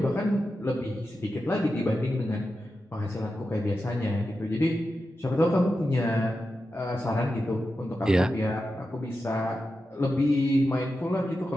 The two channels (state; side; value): normal; both; correlation 0.90